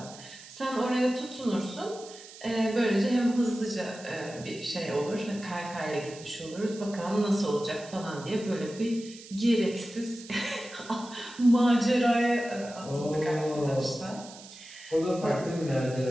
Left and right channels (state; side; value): noise; right; hiss, 17 dB below the sound